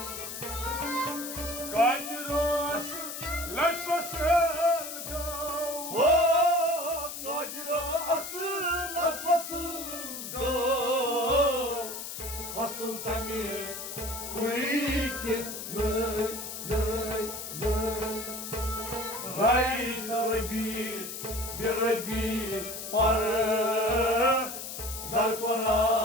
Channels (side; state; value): left; noise; hiss, 8 dB below the sound